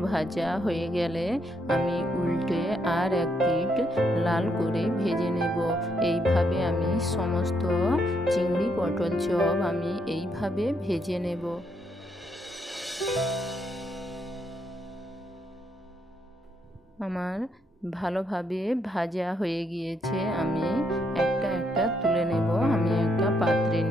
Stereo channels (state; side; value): normal; both; correlation 0.75